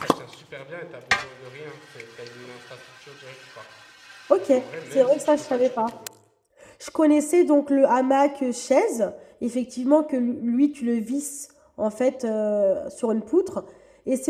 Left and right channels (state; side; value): identical; both; correlation 1.00